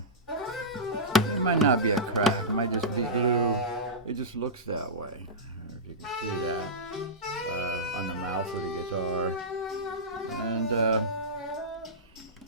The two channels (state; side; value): normal; both; correlation -0.15